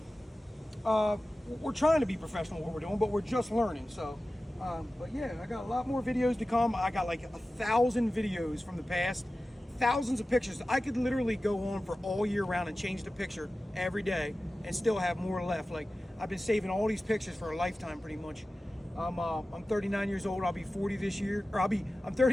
we're trying to be professional at what we're doing, but we're just learning. So, but yeah, I got a lot more videos to come. I got like 1,000 videos from the past, thousands of pictures. I could literally go on for all year round and change the picture every day and still have more left. Like, I've been saving all these pictures for a lifetime pretty much. I'm 39 years old. I'll be 40 this year, or I'm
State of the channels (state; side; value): normal; both; correlation 0.95